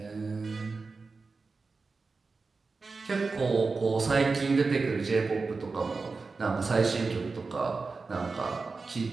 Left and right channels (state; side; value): quieter; left; 4.2 dB